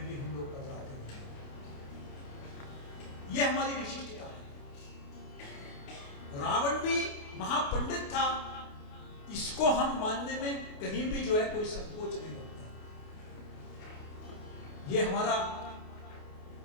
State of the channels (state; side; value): late; right; 28 ms